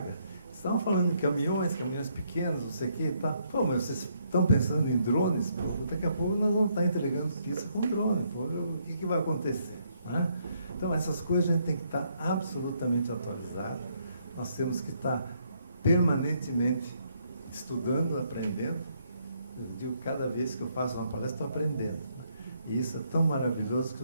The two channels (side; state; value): both; inverted; correlation -0.72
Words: estavam falando de caminhões pequenos, não sei o quê, tá? Pô, mas vocês estão pensando em drones? Pô, daqui a pouco nós vamos estar entregando pizza com drone. Pô, o que vai acontecer? Né? Então, essas coisas a gente tem que estar absolutamente atualizado. Nós temos que estar permanentemente estudando, aprendendo. Eu digo, cada vez que eu faço uma palestra, estou aprendendo. E isso é tão maravilhoso que